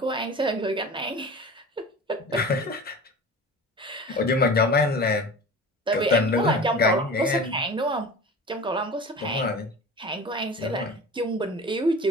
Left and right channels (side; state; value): both; normal; correlation 0.36